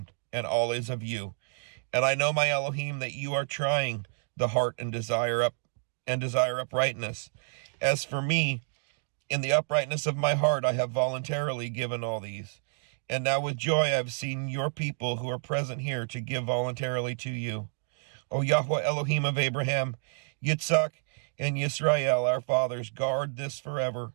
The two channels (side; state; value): left; silent; 58 dB below the other